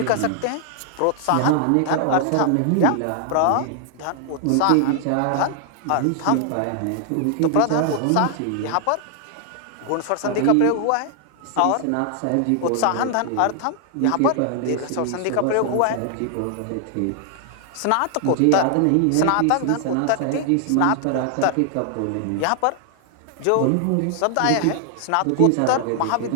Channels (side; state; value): both; different; correlation 0.00